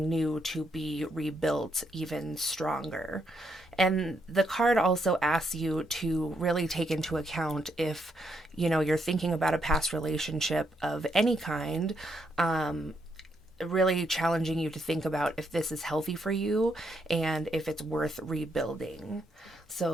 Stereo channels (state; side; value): normal; both; correlation 0.77